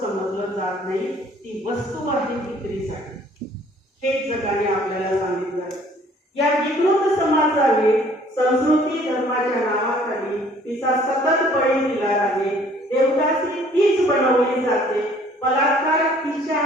जात नाही. ती वस्तू आहे विक्रीसाठी. हे जगाने आपल्याला सांगितलं. या विकृत समाजाने संस्कृती धर्माच्या नावाखाली तिचा सतत बळी दिला आहे. देवदासी तीच बनवली जाते. बलात्कार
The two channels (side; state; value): both; normal; correlation 0.57